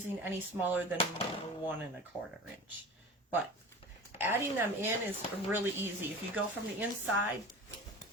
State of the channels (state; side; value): normal; both; correlation 0.36